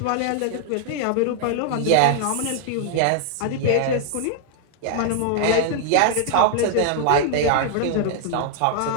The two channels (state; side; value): different; both; correlation 0.00